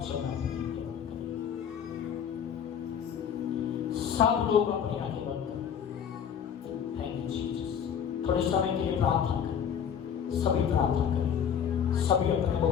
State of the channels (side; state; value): right; quieter; 8.0 dB